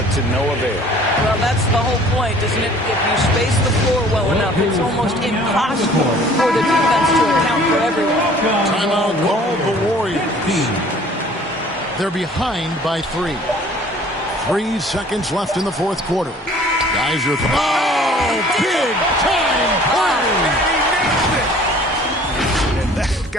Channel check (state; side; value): normal; both; correlation 0.52